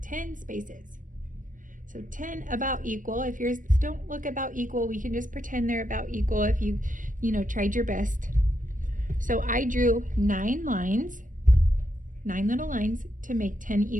10 spaces. So 10 about equal. If yours don't look about equal, we can just pretend they're about equal if you tried your best. So I drew 9 lines, 9 little lines to make 10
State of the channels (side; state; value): left; late; 0.38 ms